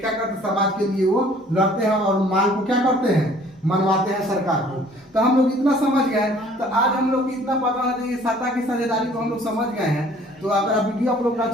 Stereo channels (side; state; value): both; normal; correlation 0.55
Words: करते हैं, समाज के लिए वो लड़ते हैं और मांग को क्या करते हैं, मनवाते हैं सरकार को। तो हम लोग इतना समझ गए, तो आज हम लोग इतना पता है कि सत्ता की साझेदारी को हम लोग समझ गए हैं। तो अगर वीडियो आप लोग को